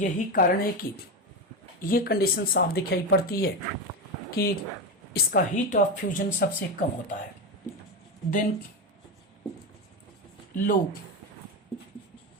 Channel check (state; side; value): normal; both; correlation 0.15